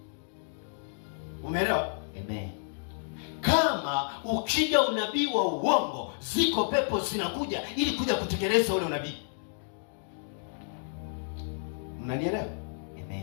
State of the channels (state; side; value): silent; right; digital silence